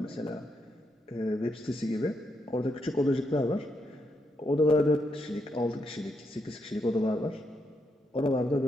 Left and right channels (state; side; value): normal; both; correlation 0.80